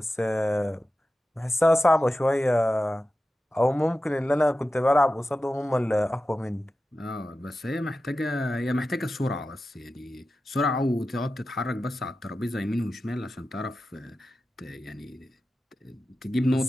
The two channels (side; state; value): both; normal; correlation 0.93